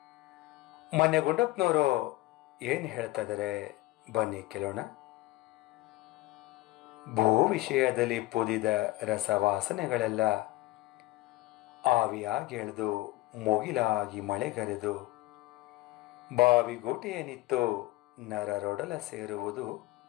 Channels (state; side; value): quieter; right; 19.2 dB